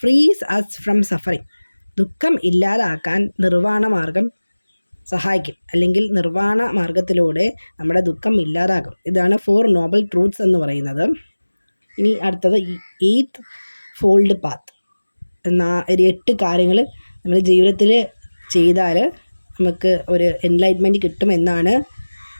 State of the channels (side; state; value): both; inverted; correlation -1.00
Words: frees us from suffering, ദുഃഖം ഇല്ലാതാക്കാൻ നിർവ്വാണ മാർഗം സഹായിക്കും, അല്ലെങ്കിൽ നിർവ്വാണ മാർഗത്തിലൂടെ നമ്മുടെ ദുഃഖം ഇല്ലാതാകും. ഇതാണ് 4 നോബൽ ട്രൂത്ത്സ് എന്ന് പറയുന്നത്. ഇനി അടുത്തത് 8th ഫോൾഡ് പാത്ത്. 8 കാര്യങ്ങൾ നമ്മൾ ജീവിതത്തിൽ ചെയ്താൽ നമുക്ക് ഒരു എൻലൈറ്റ്മെൻറ്റ് കിട്ടുമെന്നാണ്